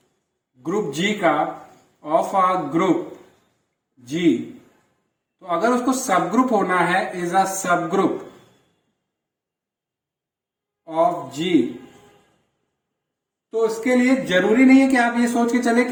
ग्रुप G का ऑफ अ ग्रुप G, तो अगर उसको सब ग्रुप होना है is a subgroup of G, तो इसके लिए जरूरी नहीं है कि आप ये सोच के चले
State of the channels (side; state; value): both; identical; correlation 1.00